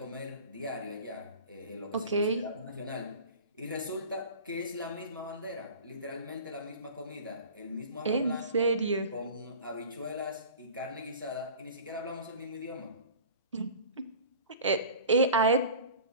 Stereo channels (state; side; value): inverted; both; correlation -0.38